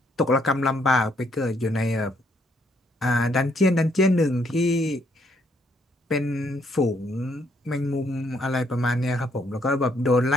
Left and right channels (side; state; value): both; normal; correlation 0.70